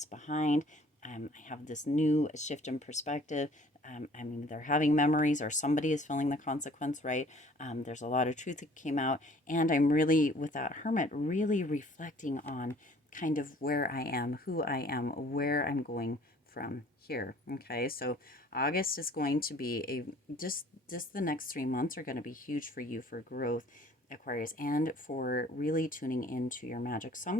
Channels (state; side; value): normal; both; correlation 0.54